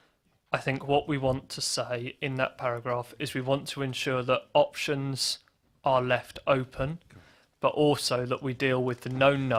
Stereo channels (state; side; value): identical; both; correlation 1.00